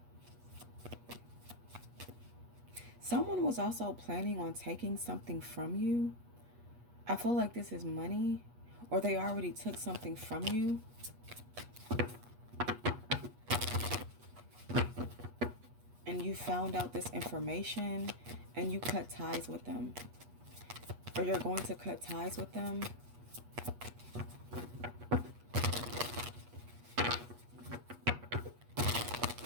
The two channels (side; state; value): left; late; 8.3 ms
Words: Someone was also planning on taking something from you. I feel like this is money, or they already took something from you. And you found out this information and you cut ties with them. Or you're going to cut ties with them.